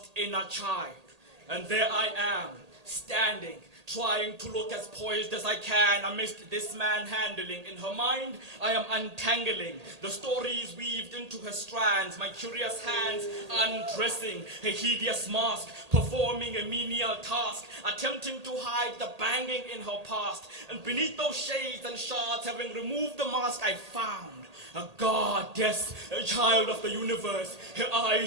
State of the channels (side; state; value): left; late; 1.8 ms